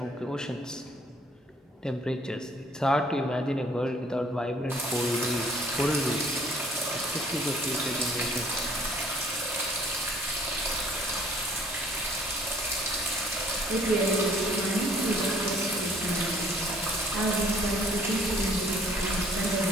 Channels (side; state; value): both; normal; correlation 0.58